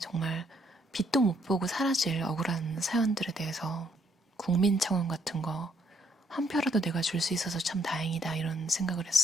정말 빛도 못 보고 사라질 억울한 사연들에 대해서 국민청원 같은 거 한 표라도 내가 줄 수 있어서 참 다행이다 이런 생각을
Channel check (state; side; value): normal; both; correlation 0.70